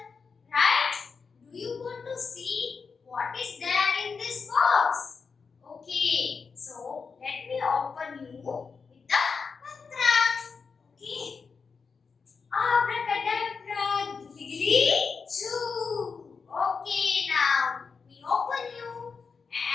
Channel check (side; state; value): right; quieter; 5.3 dB